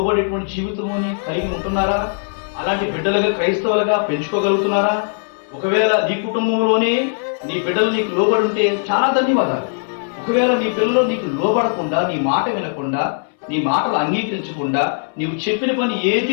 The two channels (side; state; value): right; silent; 62 dB below the other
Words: జీవితముని కలిగి ఉంటున్నారా? అలాంటి బిడ్డలుగా క్రైస్తవులుగా పెంచుకోగలుగుతున్నారా? ఒకవేళ నీ కుటుంబంలోనే నీ బిడ్డలు నీకు లోబడి ఉంటే చాలా ధన్యవాదాలు. ఒకవేళ నీ పిల్లలు నీకు లోబడకుండా, నీ మాట వినకుండా, నీ మాటలు అంగీకరించకుండా, నీవు చెప్పిన పని